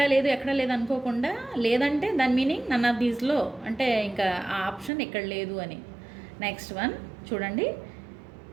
లేదు అనుకోకుండా, లేదంటే దాని మీనింగ్ నన్ ఆఫ్ దీస్లో, అంటే ఇంకా ఆ ఆప్షన్ ఎక్కడ లేదు అని. నెక్స్ట్ వన్ చూడండి.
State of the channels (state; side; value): drops out; left; at 4.9 s